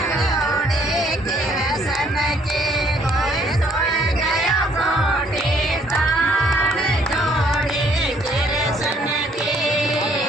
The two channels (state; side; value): normal; both; correlation 0.64